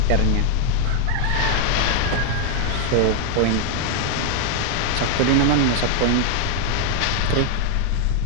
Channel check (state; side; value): different; both; correlation 0.00